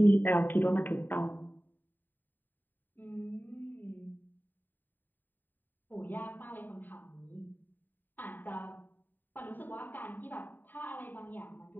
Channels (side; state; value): right; late; 0.090 ms